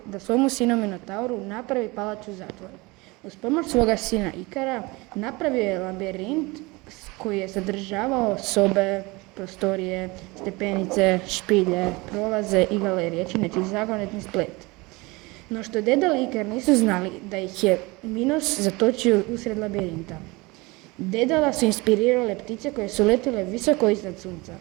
da svomu sinu Minotauru napravi palaču zatvor. Uz pomoć svoga sina Ikara napravio je labirint koji je sadržavao sobe, prostorije, stepenice, špilje, prolaze i galerije, čineći zagonetni splet. No što Dedal i Ikar nisu znali da ih je Minos zatočio usred labirinta. Dedala su inspirirale ptice koje su letile visoko iznad sunca.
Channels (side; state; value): left; quieter; 24.0 dB